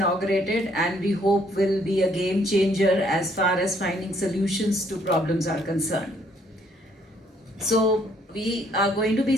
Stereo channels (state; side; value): normal; both; correlation 0.66